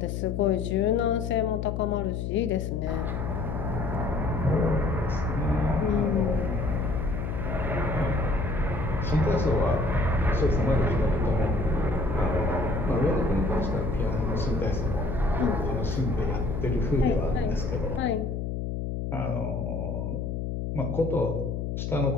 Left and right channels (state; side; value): noise; left; hum, 3 dB below the sound